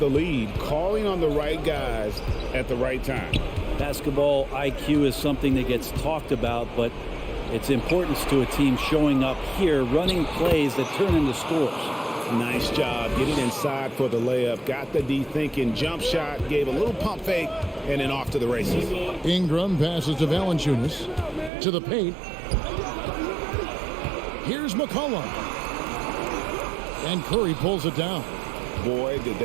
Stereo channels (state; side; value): drops out; left; at 21.5 s